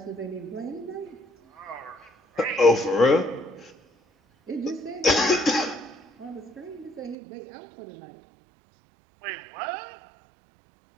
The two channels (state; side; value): drops out; left; at 7.2 s